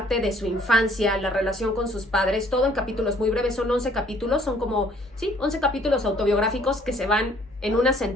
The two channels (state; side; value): normal; both; correlation 0.61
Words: de su infancia, la relación con sus padres, todo en capítulos muy breves. Son 11 capítulos, son como, sí, 11 capítulos autobiográficos que se van en una